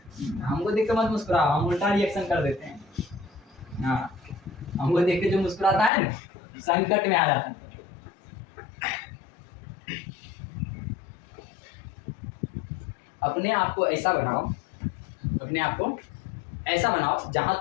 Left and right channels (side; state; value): right; drops out; at 5.9 s